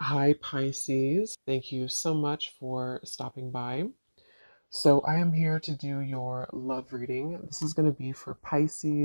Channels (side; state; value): both; inverted; correlation -1.00